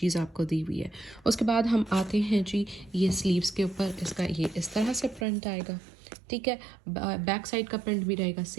आपको दी हुई है। उसके बाद हम आते हैं जी ये स्लीव्स के ऊपर, इसका ये इस तरह से प्रिंट आएगा। ठीक है, बैक साइड का प्रिंट भी रहेगा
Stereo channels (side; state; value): left; drops out; at 5.2 s